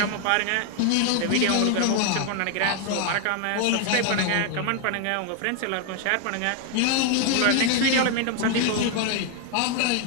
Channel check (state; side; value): different; both; correlation 0.00